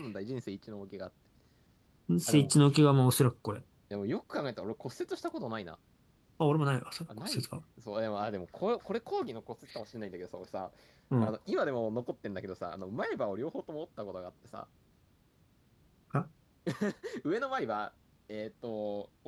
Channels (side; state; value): both; identical; correlation 1.00